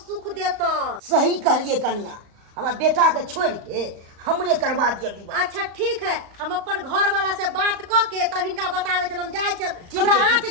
सुख देतन सही कहलिए कन्या हमरा बेटा के छोड़ के हमरे करवा दिया विवाह अच्छा ठीक है हम अपन घर वाला से बात क के तब हिनका बतावे छन हम जाय छन ठीक हमरा है, आंच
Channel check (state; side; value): late; left; 34 ms